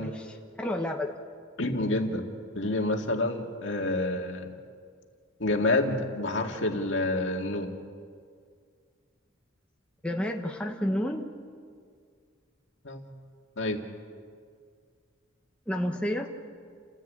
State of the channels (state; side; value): normal; both; correlation 0.25